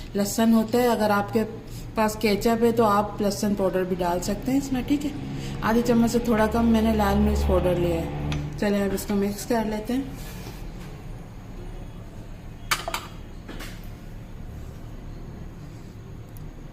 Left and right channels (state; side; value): identical; both; correlation 1.00